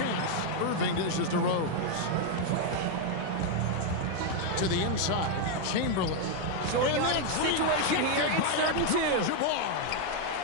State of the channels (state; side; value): different; both; correlation 0.01